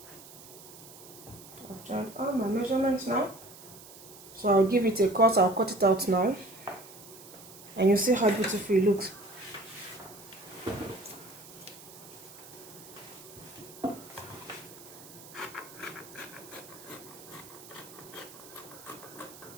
I've joined all my measurements now. So I'll give it a cut. I'll cut it out now. And you see how beautiful it looks.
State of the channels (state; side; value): noise; right; hiss, 18 dB below the sound